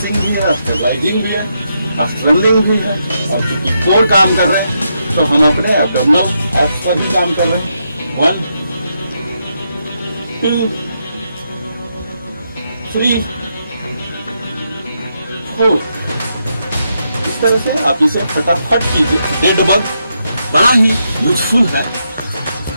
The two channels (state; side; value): inverted; both; correlation -0.81